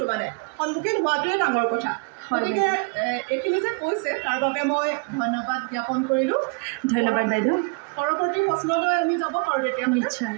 মানে সন্মুখীন হোৱাটোৱে ডাঙৰ কথা গতিকে এইখিনি যে কৈছে তাৰ বাবে মই ধন্যবাদ জ্ঞাপন কৰিলোঁ ধন্যবাদ বাইদেউ পৰৱৰ্তী প্ৰশ্নলৈ আমি যাব পাৰোঁ তেতিয়া নিশ্চয়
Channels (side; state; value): left; quieter; 33.0 dB